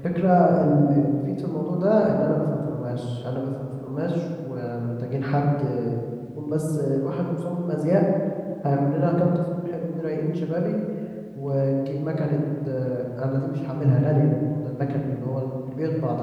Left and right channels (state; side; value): identical; both; correlation 1.00